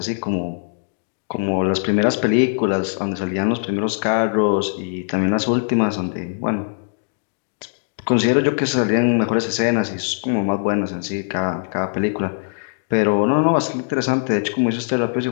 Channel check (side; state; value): right; silent; digital silence